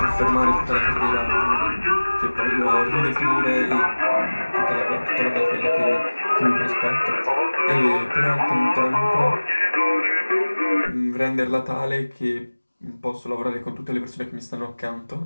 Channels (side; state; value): both; inverted; correlation -1.00